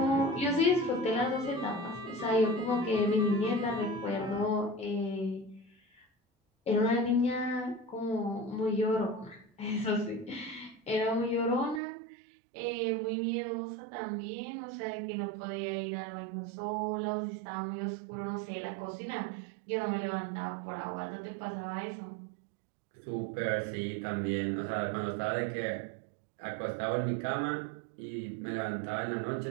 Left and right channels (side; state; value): left; drops out; at 11.8 s